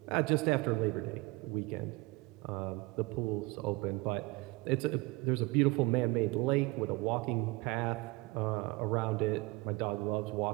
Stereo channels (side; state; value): left; quieter; 23.5 dB